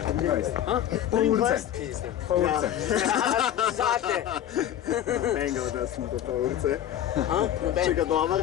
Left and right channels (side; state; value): right; quieter; 11.1 dB